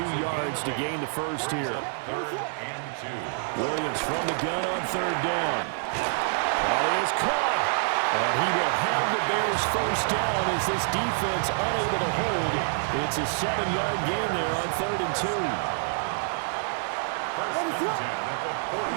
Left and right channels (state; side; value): silent; left; digital silence